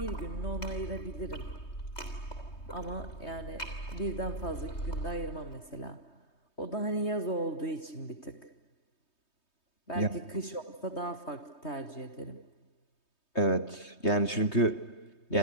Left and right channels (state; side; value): late; right; 3.2 ms